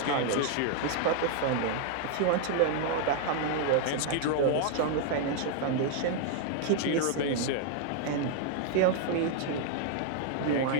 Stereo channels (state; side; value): different; both; correlation 0.00